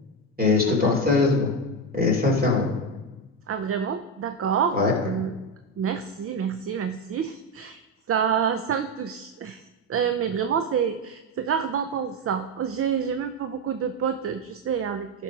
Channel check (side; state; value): both; normal; correlation 0.11